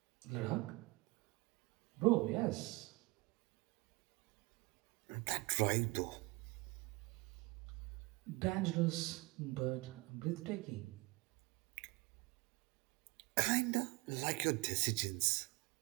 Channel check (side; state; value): left; quieter; 24.5 dB